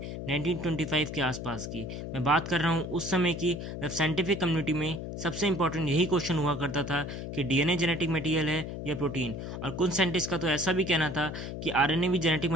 1925 के आसपास की। मैं बात कर रहा हूँ उस समय की, जब साइंटिफिक कम्युनिटी में सबसे इंपॉर्टेंट यही क्वेश्चन हुआ करता था कि डीएनए जेनेटिक मटेरियल है या प्रोटीन। और कुछ साइंटिस्ट का तो ऐसा भी कहना था कि आरएनए भी जेनेटिक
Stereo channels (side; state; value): left; noise; hum, 7 dB below the sound